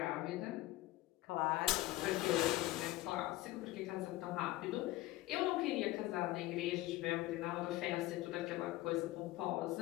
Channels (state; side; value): quieter; right; 17.3 dB